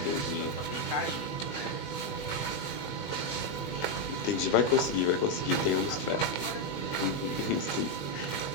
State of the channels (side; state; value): right; late; 20 ms